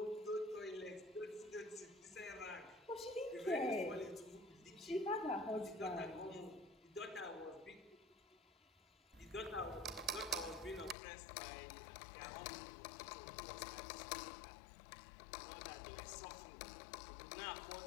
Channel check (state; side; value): drops out; right; at 11.0 s